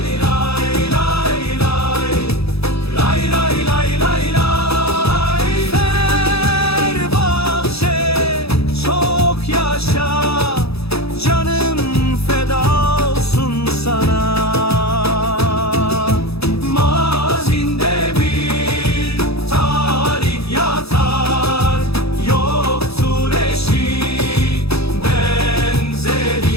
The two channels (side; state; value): right; late; 0.78 ms